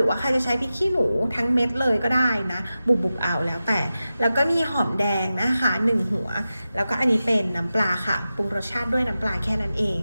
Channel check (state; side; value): inverted; both; correlation -0.93